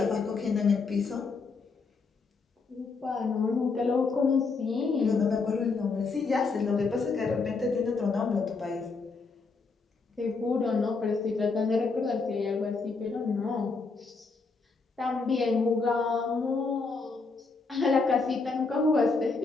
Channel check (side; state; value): right; quieter; 4.3 dB